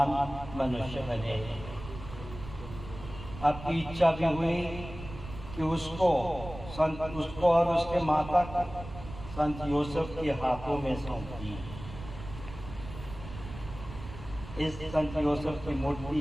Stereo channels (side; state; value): right; noise; rumble, 12 dB below the sound